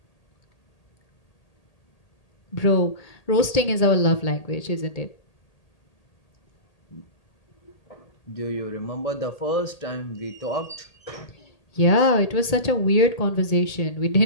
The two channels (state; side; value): late; right; 1.8 ms